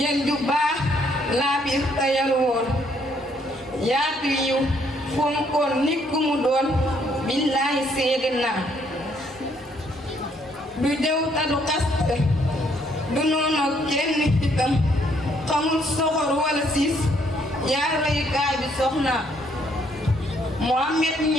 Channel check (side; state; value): both; normal; correlation 0.69